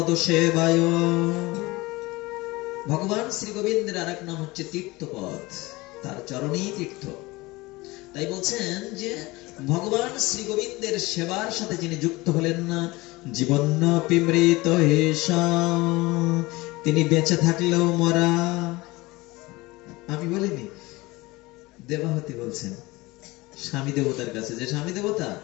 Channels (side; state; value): right; quieter; 21.7 dB